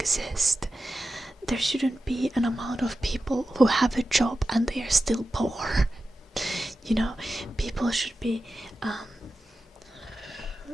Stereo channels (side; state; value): both; normal; correlation 0.93